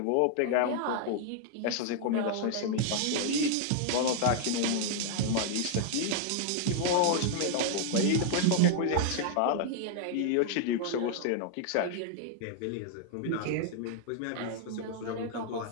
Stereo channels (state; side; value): different; both; correlation 0.00